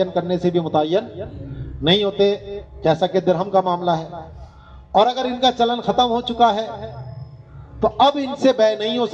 करने से भी मुतय्यन नहीं होते, जैसा कि दिरहम का मामला है। और अगर इनका चलन खत्म हो चुका है तो अब इनसे बै नहीं हो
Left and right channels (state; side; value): identical; both; correlation 1.00